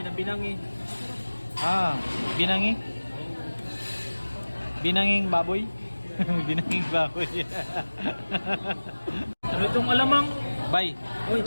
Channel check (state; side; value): inverted; both; correlation -1.00